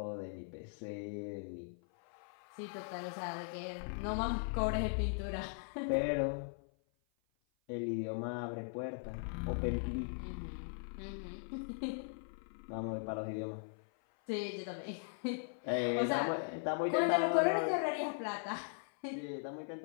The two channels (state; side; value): silent; right; 52 dB below the other